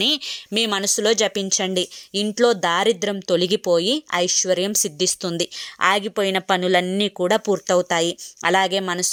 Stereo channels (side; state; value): both; identical; correlation 1.00